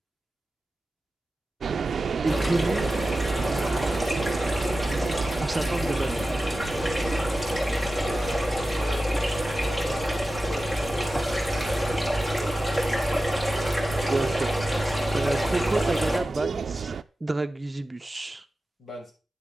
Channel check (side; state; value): both; normal; correlation 0.94